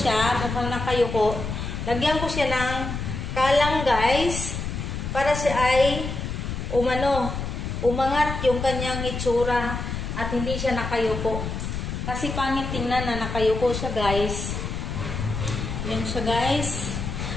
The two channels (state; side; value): noise; left; rumble, 4 dB below the sound